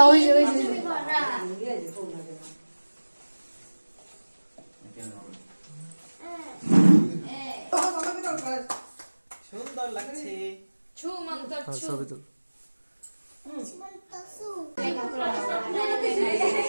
ওই যে সুন্দর লাগছে ছুমন্ত ছবি তুল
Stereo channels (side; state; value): both; inverted; correlation -1.00